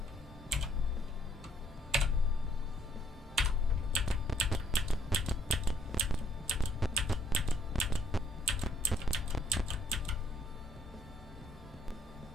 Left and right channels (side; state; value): both; normal; correlation 0.67